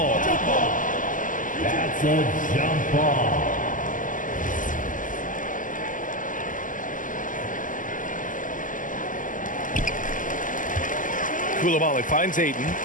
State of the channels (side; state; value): right; late; 0.38 ms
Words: That's a jump ball. Coulibaly finds Ayton.